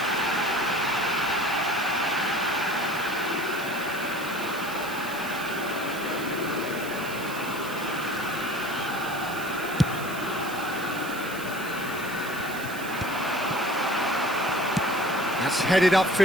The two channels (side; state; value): right; noise; hiss, 13 dB below the sound